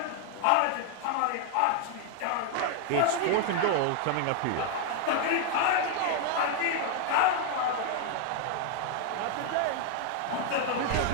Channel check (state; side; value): different; both; correlation 0.00